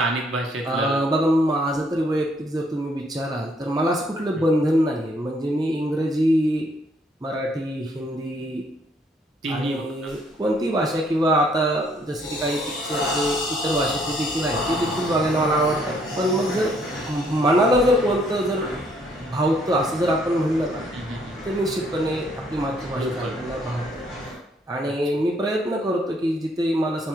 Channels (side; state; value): both; normal; correlation 0.67